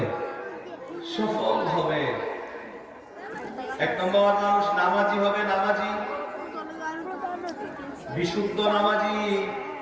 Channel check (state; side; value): identical; both; correlation 1.00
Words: সফল হবে। 1 নম্বর, মানুষ নামাজি হবে। নামাজি, বিশুদ্ধ নামাজি,